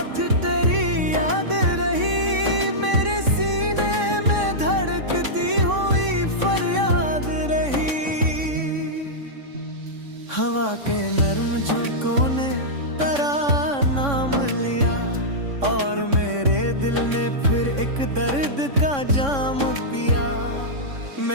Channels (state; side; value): late; left; 3.6 ms